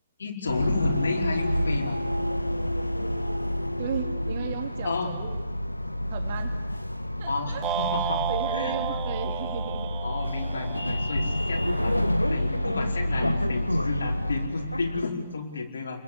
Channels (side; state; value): both; inverted; correlation -0.81